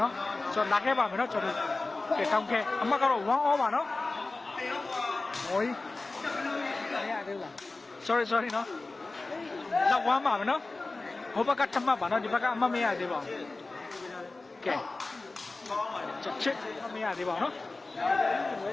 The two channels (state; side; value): quieter; right; 3.4 dB